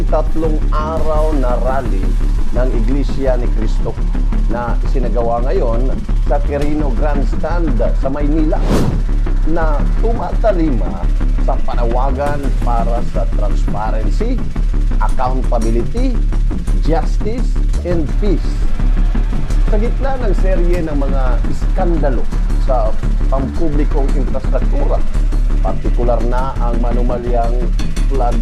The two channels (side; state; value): both; identical; correlation 1.00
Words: 3 araw na rally ng Iglesia ni Cristo na isinagawa ngayon sa Quirino Grandstand sa Maynila, na tumatalima sa panawagan para sa transparency, accountability, justice, and peace. Sa gitna ng serye ng mga iskandalo sa pampublikong infrastruktura, partikular na ang manumalyang flood